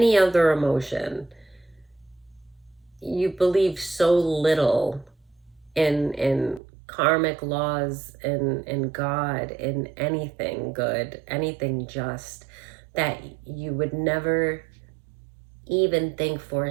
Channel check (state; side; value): drops out; left; at 6.6 s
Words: other emotion, you believe so little in karmic laws, in God, in anything good, anything just, that you would never even think for a